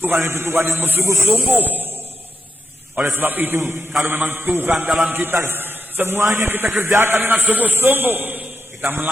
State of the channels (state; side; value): normal; both; correlation 0.85